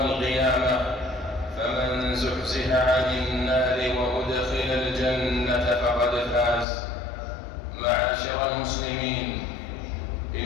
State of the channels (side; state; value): right; drops out; at 6.7 s